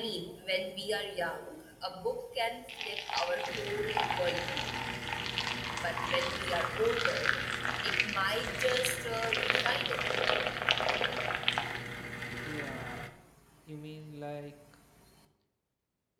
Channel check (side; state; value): both; identical; correlation 1.00